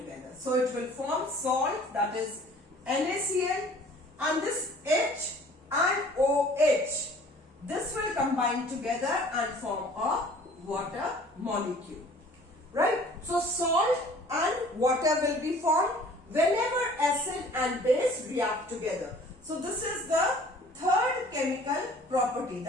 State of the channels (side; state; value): both; normal; correlation 0.51